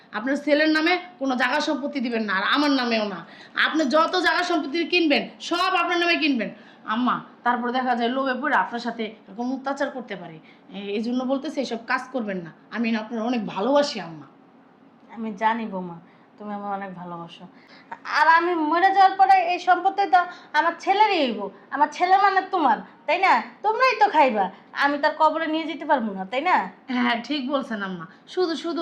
আপনার ছেলের নামে কোনো জায়গা সম্পত্তি দিবেন না, আর আমার নামেও না। আপনি যত জায়গা সম্পত্তি কিনবেন সব আপনার নামে কিনবেন আম্মা। তারপর দেখা যায় লোভে পড়ে আপনার সাথে এরকম অত্যাচার করতে পারে। এই জন্য বলতেছে এইসব কাজ করবেন না। আমি না আপনার অনেক ভালোবাসি আম্মা। আমি জানি বৌমা তুমি আমার অনেক ভালোবাসো, আর আমি মরে যাওয়ার পরে এই সম্পত্তি তো আমার ছেলেরই হইব। আমার ছেলে মানে তোমার, তাই না? তোমরাই তো খাইবা, আমি তার কবরে নিয়ে যেতে পারবো না, তাই না? হ্যাঁ ঠিক বলছেন আম্মা, শুধু শুধু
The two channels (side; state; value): both; identical; correlation 1.00